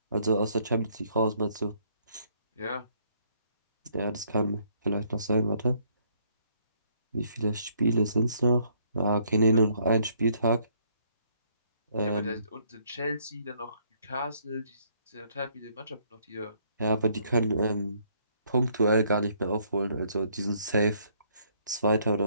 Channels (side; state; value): both; inverted; correlation -0.68